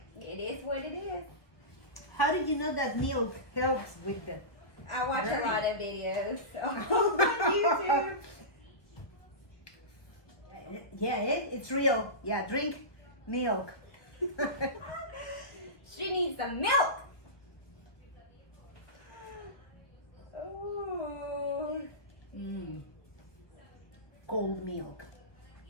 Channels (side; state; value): right; late; 1.1 ms